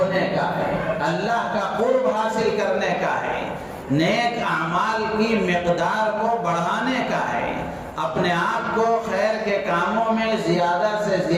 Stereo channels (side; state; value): both; identical; correlation 1.00